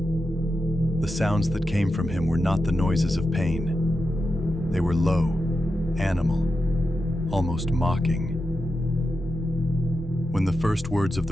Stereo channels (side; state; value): both; normal; correlation 0.89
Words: The sounds that came from him were not the noises of pain. They were low, animal, almost mocking. When the first words of